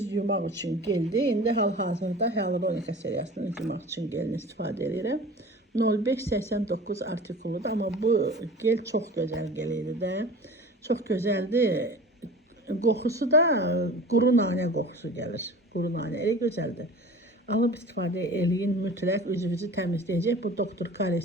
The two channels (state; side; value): normal; both; correlation 0.39